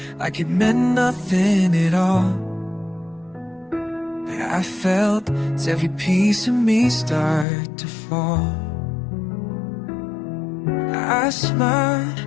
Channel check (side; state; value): right; drops out; at 7.5 s